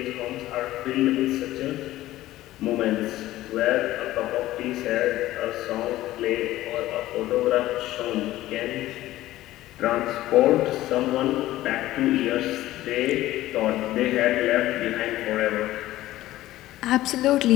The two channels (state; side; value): quieter; right; 15.6 dB